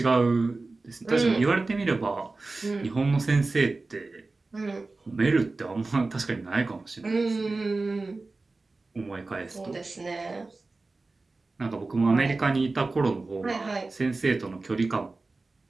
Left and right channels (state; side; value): quieter; left; 3.5 dB